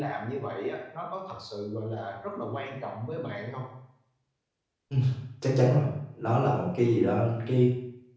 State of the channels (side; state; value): both; identical; correlation 1.00